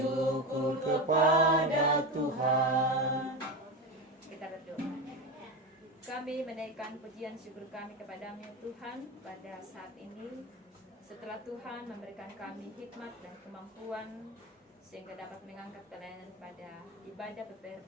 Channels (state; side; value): normal; both; correlation 0.20